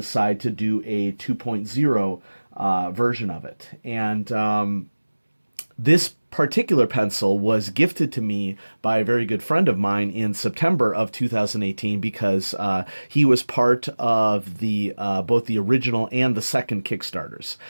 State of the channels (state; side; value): inverted; both; correlation -1.00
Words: to do a 2.0 version of it. And this particular pencil was gifted to me by a very good friend of mine in September of 2018 because he was part of the both the original and the second Kickstarters.